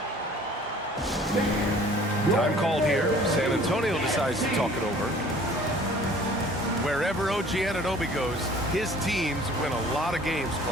Time called here. San Antonio decides to talk it over. Wherever OG Anunoby goes, his teams win a lot of games,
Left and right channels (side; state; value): both; normal; correlation 0.51